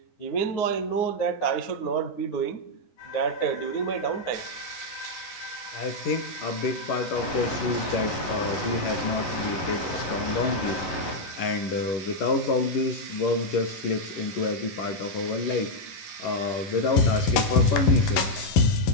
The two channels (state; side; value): late; right; 11 ms